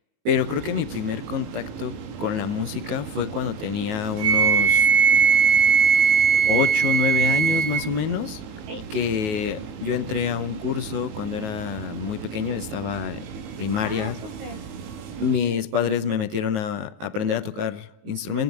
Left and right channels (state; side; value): late; left; 19 ms